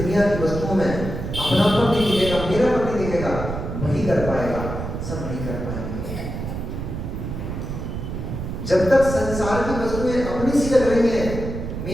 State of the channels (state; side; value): noise; right; rumble, 6 dB below the sound